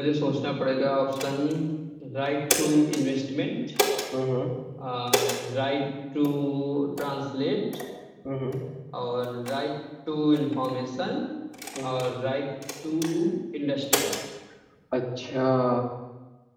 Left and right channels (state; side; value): identical; both; correlation 1.00